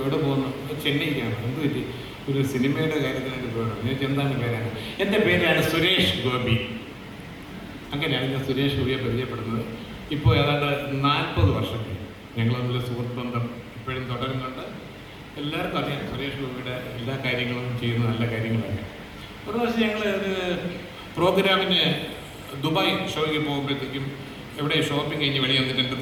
പോകുന്നു? ചെന്നൈക്കാണ്. എന്ത് പറ്റി? ഒരു സിനിമയുടെ കാര്യത്തിനായിട്ട് പോകണം. ഞാൻ എന്താണ് പേരാണ്? എൻ്റെ പേരാണ് സുരേഷ് ഗോപി. അങ്ങനെയാണ് ഞാൻ സുരേഷ് ഗോപിയെ പരിചയപ്പെടുന്നത്. ഇപ്പോൾ ഏതാണ്ട് 40 വർഷം ഞങ്ങൾ തമ്മിൽ സുഹൃത്ത് ബന്ധം ഇപ്പോഴും തുടരുന്നുണ്ട്. എല്ലാവർക്കും അറിയാം സുരേഷ് ഗോപിയുടെ എല്ലാ കാര്യങ്ങളും ചെയ്യുന്ന നല്ല കാര്യങ്ങളൊക്കെ. ഒരു പ്രാവശ്യം ഞങ്ങൾ ഒരു പ്രോഗ്രാമിന് ദുബായ് ഷോയ്ക്ക് പോകുമ്പോഴത്തേക്കും എവിടെ ഷോപ്പിംഗ് കഴിഞ്ഞ് വെളിയിൽ വന്നിട്ട് എൻ്റെ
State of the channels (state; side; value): identical; both; correlation 1.00